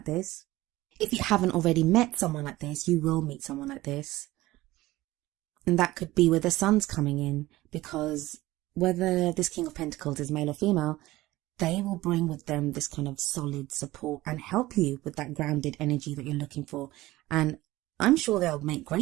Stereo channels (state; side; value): quieter; left; 17.8 dB